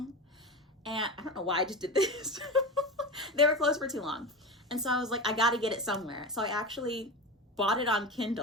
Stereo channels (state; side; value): normal; both; correlation 0.25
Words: And I don't know why I just did this. They were closed for too long. And so I was like, I gotta get it somewhere. So I actually bought it on